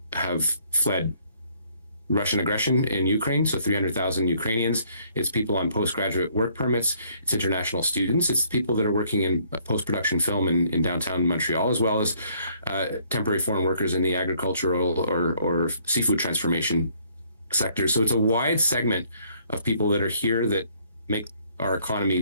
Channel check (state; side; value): inverted; both; correlation -0.64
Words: have fled Russian aggression in Ukraine, so 300,000 Ukrainians. It's people on postgraduate work permits. It's international students. It's people that are working in post-production film in downtown Montreal, as well as temporary foreign workers in the agricultural or seafood transformation sector. So it's a wide segment of people that are here that make our economy